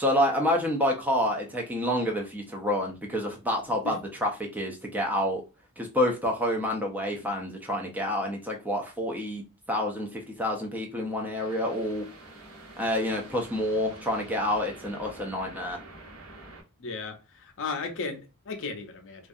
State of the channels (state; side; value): normal; both; correlation 0.33